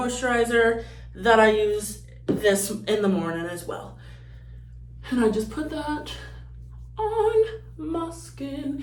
that I use this in the morning as well. And I just put that on my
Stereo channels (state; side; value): identical; both; correlation 1.00